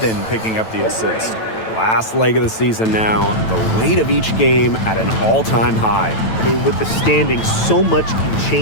picking up the assist. Last leg of the season now, the weight of each game at an all-time high. I mean, with the standings, so much can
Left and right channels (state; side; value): late; right; 9.1 ms